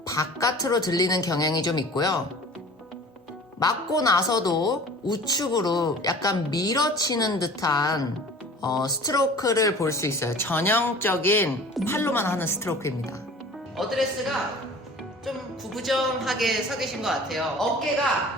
바깥으로 들리는 경향이 좀 있고요. 맞고 나서도 우측으로 약간 밀어치는 듯한 스트로크를 볼 수 있어요. 전형적인 팔로만 하는 스트로크입니다. 어드레스가 좀 구부정하게 서 계신 것 같아요.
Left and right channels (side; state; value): both; normal; correlation 0.43